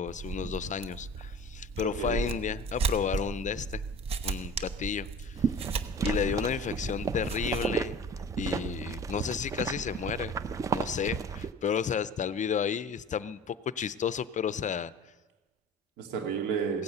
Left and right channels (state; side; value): normal; both; correlation 0.40